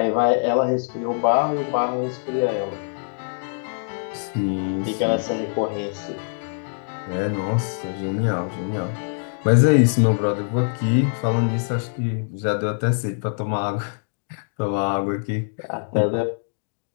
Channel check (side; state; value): right; silent; digital silence